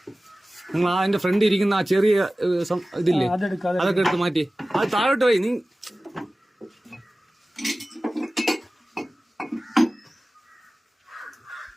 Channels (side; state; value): both; normal; correlation 0.96